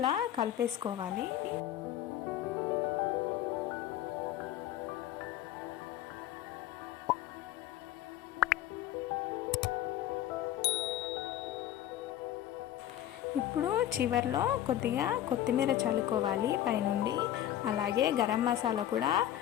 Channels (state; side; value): quieter; right; 12.4 dB